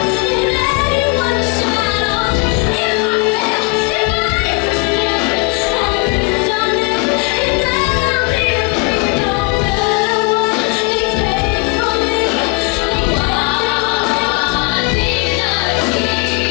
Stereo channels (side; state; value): right; quieter; 28.8 dB